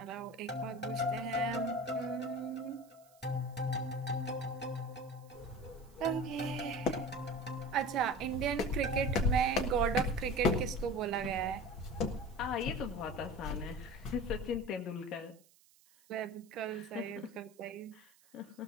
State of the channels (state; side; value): noise; right; hiss, 29 dB below the sound